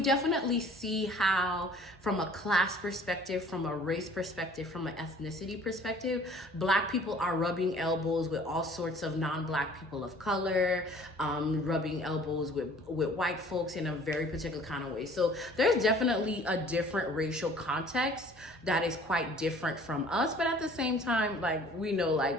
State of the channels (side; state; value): both; normal; correlation 0.52